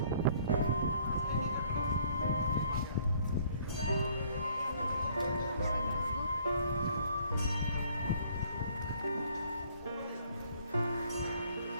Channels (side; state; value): both; inverted; correlation -0.60